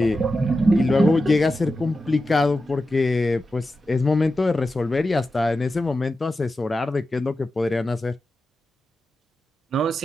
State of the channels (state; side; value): normal; both; correlation 0.91